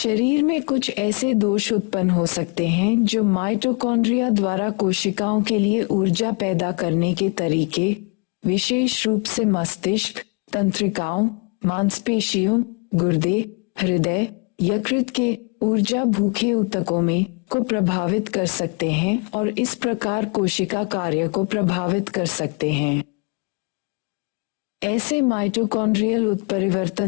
में कुछ ऐसे दोष उत्पन्न हो सकते हैं जो माइटोकॉन्ड्रिया द्वारा कोशिकाओं के लिए ऊर्जा पैदा करने के तरीके, विशेष रूप से मस्तिष्क, तंत्रिकाओं, मांसपेशियों, गुर्दे, हृदय, यकृत के ऊर्जा भूखे ऊतकों में को प्रभावित कर सकते हैं और इस प्रकार कोशिका कार्य को प्रभावित कर सकते हैं। ऐसे माइटोकॉन्ड्रियल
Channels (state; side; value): quieter; right; 33.2 dB